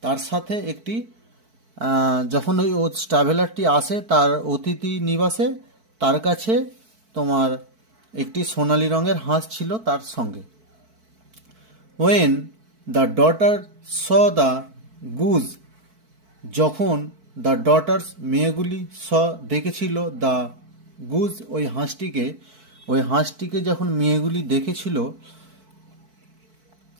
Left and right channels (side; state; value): left; late; 4.5 ms